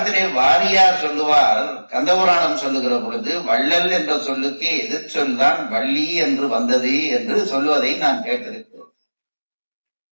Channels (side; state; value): both; inverted; correlation -1.00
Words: வாரியார் சொல்லுவார், கந்தபுராணம் சொல்லுகிற பொழுது வள்ளல் என்ற சொல்லுக்கு எதிர்ச்சொல் தான் வள்ளி என்று வந்தது என்று சொல்லுவதை நான் கேட்டிருக்கிறேன்.